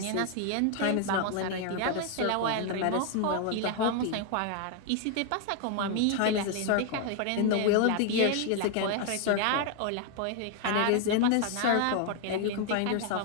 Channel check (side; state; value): both; different; correlation 0.01